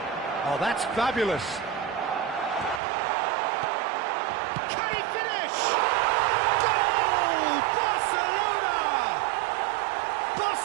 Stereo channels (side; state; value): left; drops out; at 2.8 s